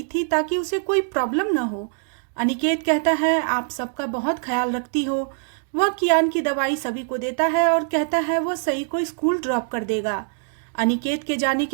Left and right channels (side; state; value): left; silent; digital silence